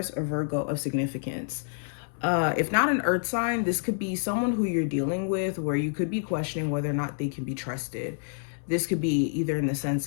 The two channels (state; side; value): silent; right; 59 dB below the other